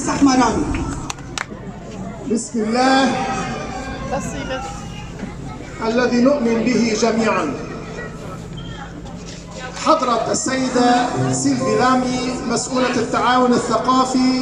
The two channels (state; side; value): identical; both; correlation 1.00